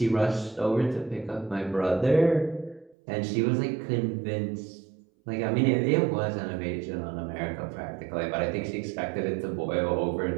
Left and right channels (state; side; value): drops out; left; at 3.0 s